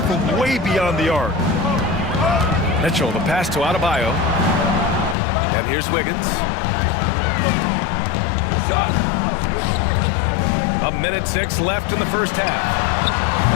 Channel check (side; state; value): right; drops out; at 5.2 s